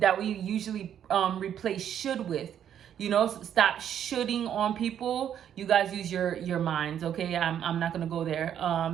we usually replace should with. You know, stop shooting on people. You guys use your minds, okay? I'm not gonna go there.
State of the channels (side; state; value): left; quieter; 9.6 dB